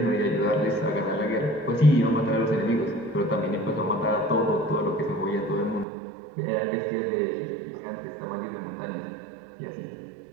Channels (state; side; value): drops out; left; at 5.9 s